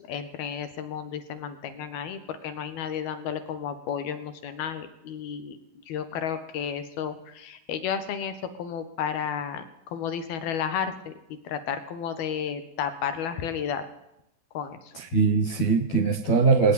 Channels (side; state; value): right; late; 12 ms